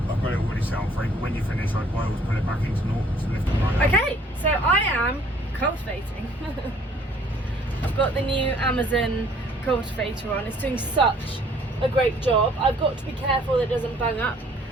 I've got it already set on free, but when you finish, I'd always put it back into naught to lift it right up. Okay, so I am cultivating. I've got the new Amazon cultivator on. It's doing such a great job. I've got to be careful that it doesn't bung up,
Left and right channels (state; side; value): normal; both; correlation 0.59